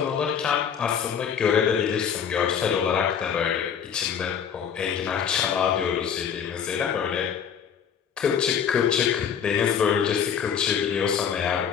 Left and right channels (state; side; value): quieter; right; 7.7 dB